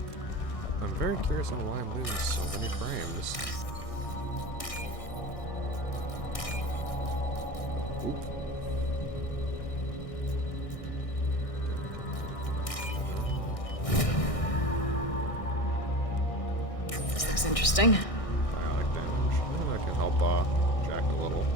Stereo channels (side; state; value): right; late; 1.6 ms